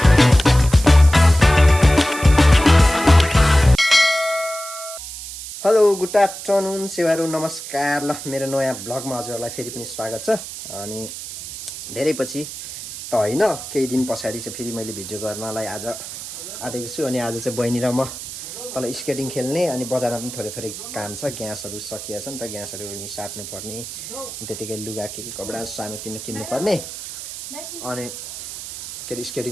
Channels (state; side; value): noise; right; hiss, 10 dB below the sound